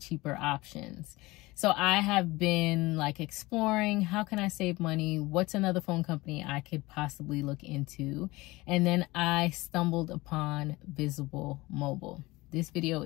options? So I have been like exploring, how can I save money, what's another phone company I could possibly look into, and then I stumbled upon Visible Mobile. This video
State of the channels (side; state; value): right; quieter; 21.0 dB